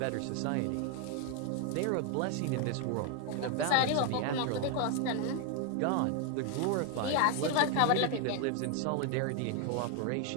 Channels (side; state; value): both; different; correlation 0.01